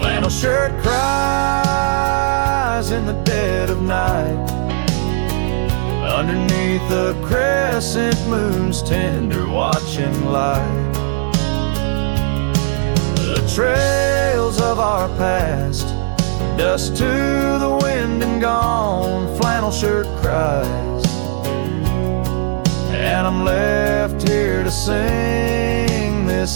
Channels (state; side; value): silent; left; digital silence